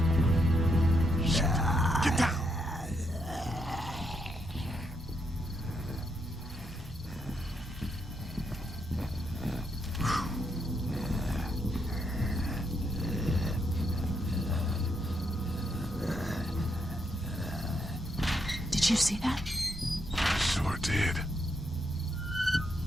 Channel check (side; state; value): both; normal; correlation 0.79